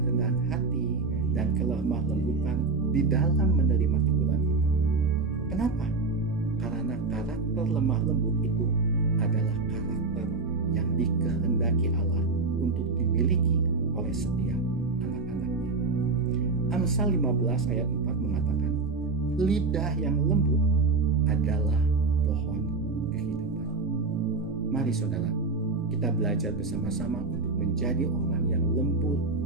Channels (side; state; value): left; quieter; 3.9 dB